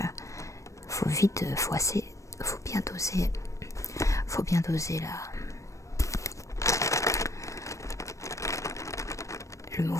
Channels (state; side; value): late; right; 0.15 ms